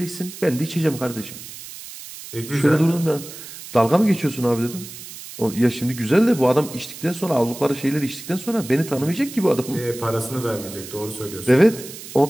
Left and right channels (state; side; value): noise; right; hiss, 13 dB below the sound